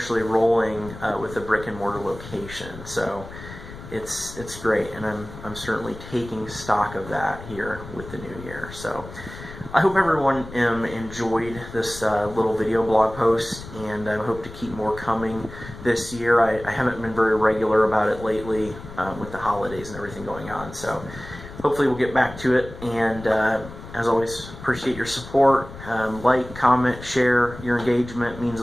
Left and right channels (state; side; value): noise; left; rumble, 14 dB below the sound